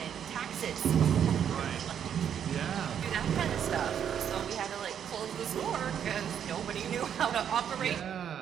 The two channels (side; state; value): left; quieter; 8.8 dB